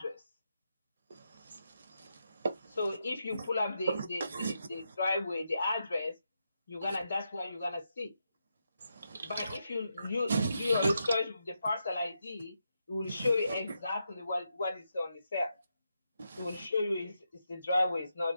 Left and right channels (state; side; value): inverted; both; correlation -0.84